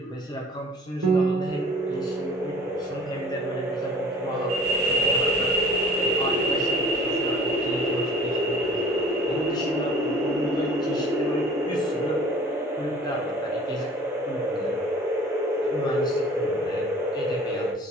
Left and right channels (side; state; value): both; normal; correlation 0.48